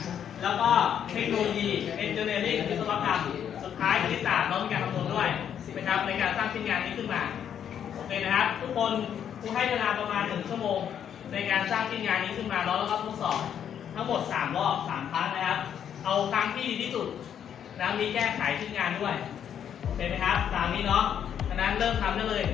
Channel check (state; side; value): quieter; right; 9.0 dB